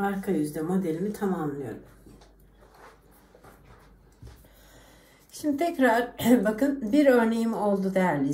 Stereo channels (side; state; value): both; identical; correlation 1.00